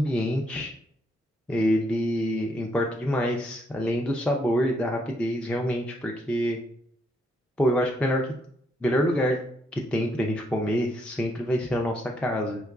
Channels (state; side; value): normal; both; correlation 0.75